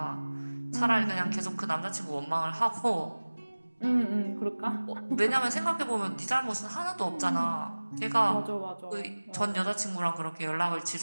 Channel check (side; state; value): both; inverted; correlation -1.00